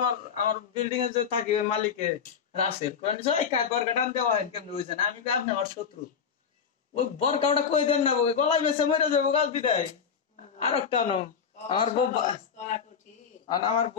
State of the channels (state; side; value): quieter; right; 6.9 dB